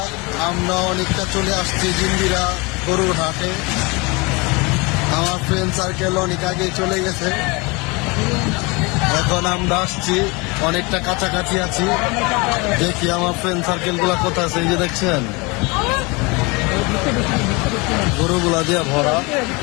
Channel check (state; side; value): quieter; right; 26.7 dB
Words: আমরা অনেকটা চলে আসছি জিঞ্জিরা গরুর হাটে। আমার ফ্রেন্ড সার্কেল অনেক আগে চলে গেছে, এখন আমরা আসছি, অনেকটা কাছাকাছি আছি। দেখি আমার ফ্রেন্ড সার্কেল গুলা কোথায় আছে। এই যে দেখছেন গরুগুলা দিয়ে ভরা।